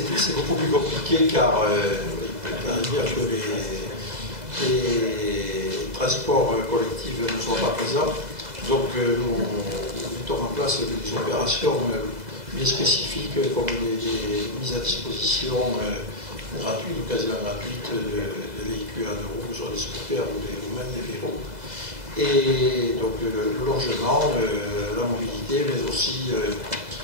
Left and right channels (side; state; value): left; late; 2.0 ms